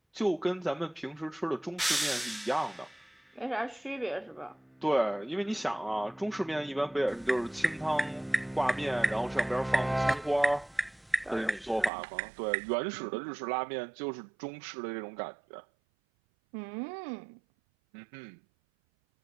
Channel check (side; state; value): left; drops out; at 11.9 s